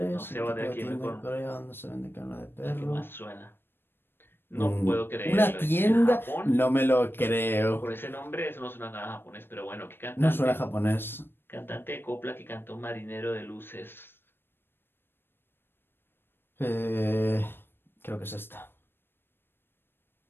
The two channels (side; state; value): right; late; 0.10 ms